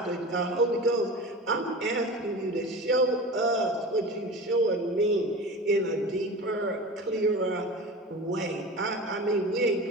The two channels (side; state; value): both; normal; correlation 0.32